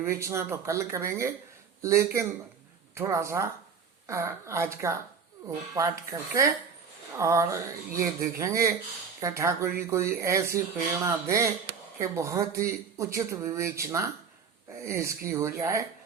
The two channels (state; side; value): quieter; left; 6.1 dB